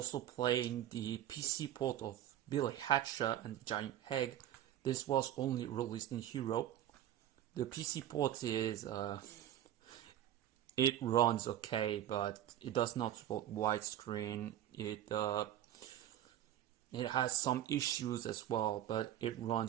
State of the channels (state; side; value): quieter; left; 12.1 dB